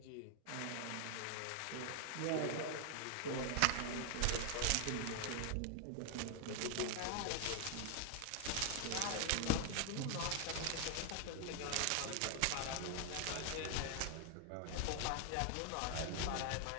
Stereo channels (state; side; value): different; both; correlation 0.00